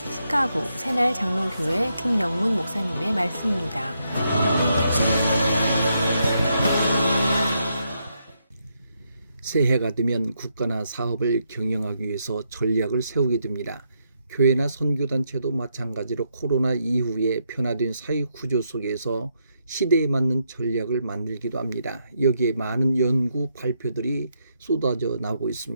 새날 장로교회 김영문 목사님의 말씀입니다. 새해가 되면 국가나 사업을 경영하기 위해서 전략을 세우게 됩니다. 교회나 선교단체도 마찬가지로 코로나 이후에 변화된 사회구조 속에서 시대에 맞는 전략을 만들기도 합니다. 여기에 많은 연구 발표들이 쏟아져 나오고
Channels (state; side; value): inverted; both; correlation -0.79